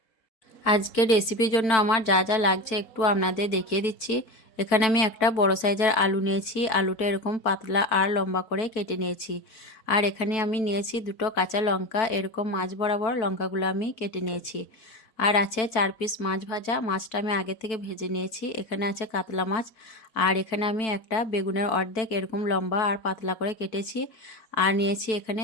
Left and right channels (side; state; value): right; late; 4.5 ms